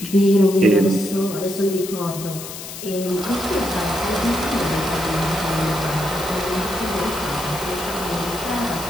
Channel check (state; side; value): noise; left; hiss, 10 dB below the sound